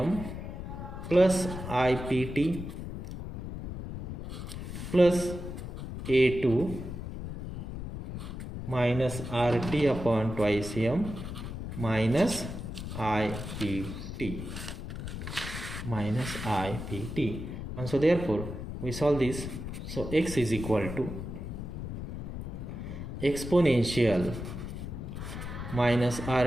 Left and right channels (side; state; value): left; noise; rumble, 7 dB below the sound